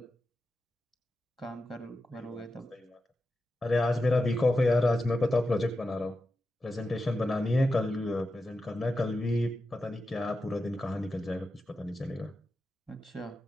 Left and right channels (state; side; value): normal; both; correlation 0.90